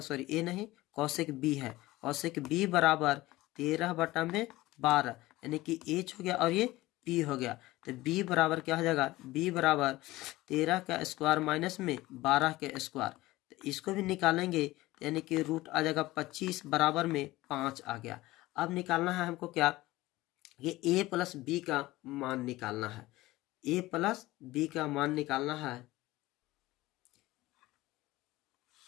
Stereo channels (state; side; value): quieter; right; 18.3 dB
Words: ए नहीं, कॉसेक बी है, कॉसेक बी बराबर 13 बटा में 12, यानी कि एच हो गया और ये पी हो गया। तो बी बराबर क्या हो जाएगा, बी बराबर 13 का स्क्वायर माइनस में 12 के स्क्वायर, तो इसको भी निकालेंगे यानी कि रूट आ जाएगा 25 बराबर में 5 आ गया। अब निकालना है हमको क्या, ये a प्लस बी का मान निकालना है, a प्लस बी का मान निकालना है।